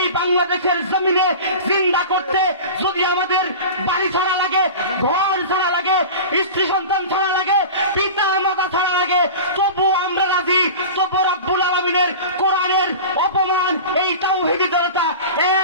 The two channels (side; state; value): both; inverted; correlation -0.33